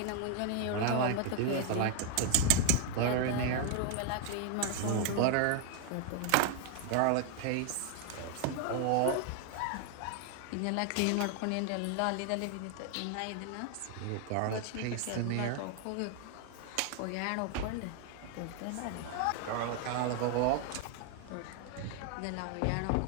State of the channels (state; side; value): different; both; correlation 0.00